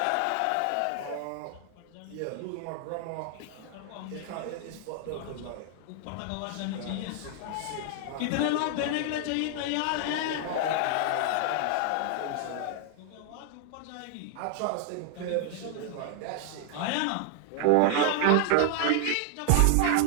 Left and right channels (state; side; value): different; both; correlation 0.00